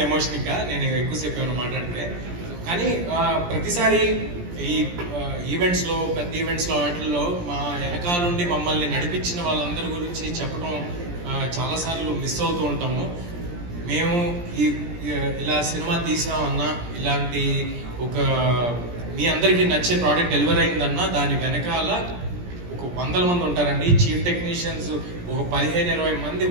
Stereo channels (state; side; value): late; left; 17 ms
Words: ఎమోషన్. ఇంకా నేను ఎక్కువసేపు ఏమైనా మాట్లాడితే. కానీ ప్రతిసారి ఈ ఈవెంట్స్లో, పెద్ద ఈవెంట్స్లో, వాటిల్లో మా వెనకాలండి మమ్మల్ని నడిపించిన వాళ్ళందరి గురించి చెప్పడం చాలాసార్లు మిస్ అవుతూ ఉంటాము. మేము ఇలా సినిమా తీసామన్నా, ఇలాంటి ఒక మీ అందరికీ నచ్చే ప్రోడక్ట్ డెలివర్ అయిందన్నా దాని వెనకాల ఒక 100 మంది ఉంటారండి. చీఫ్ టెక్నీషియన్స్ ఒక 15-20 మంది.